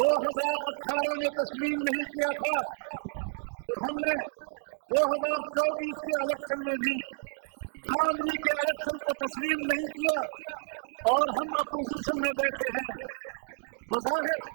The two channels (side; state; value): left; silent; digital silence